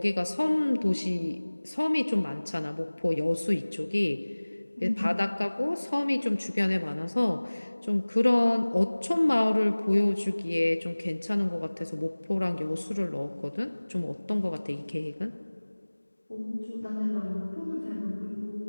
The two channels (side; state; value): both; inverted; correlation -1.00